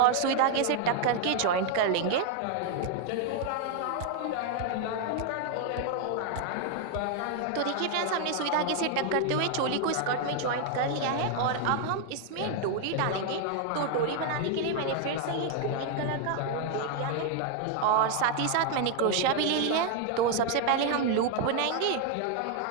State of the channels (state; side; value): different; both; correlation 0.00